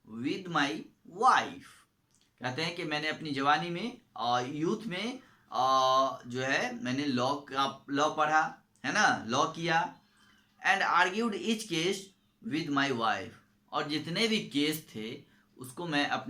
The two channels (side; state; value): both; identical; correlation 1.00